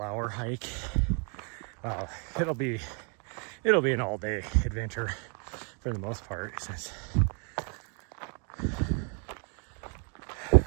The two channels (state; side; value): quieter; left; 38.6 dB